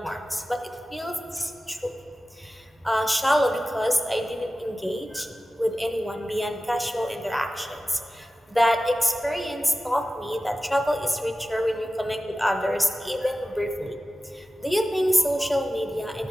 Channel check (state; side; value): normal; both; correlation 0.95